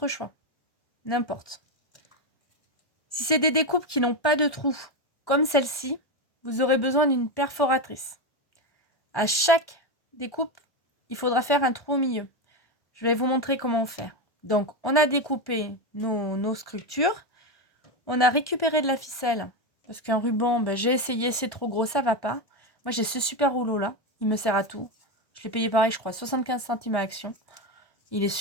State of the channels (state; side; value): late; right; 1.1 ms